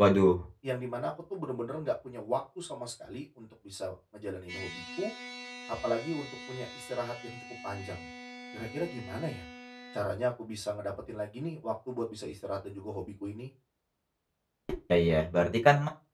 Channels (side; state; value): both; identical; correlation 1.00